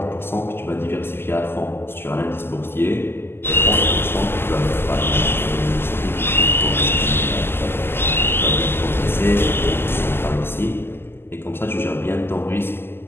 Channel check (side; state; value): right; late; 0.11 ms